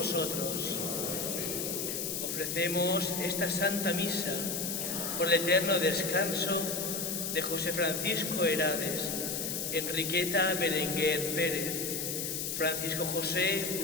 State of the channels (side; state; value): left; noise; hiss, 2 dB below the sound